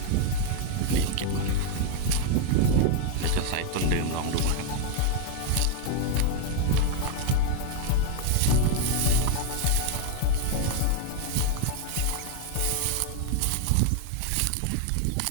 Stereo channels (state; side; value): different; both; correlation 0.01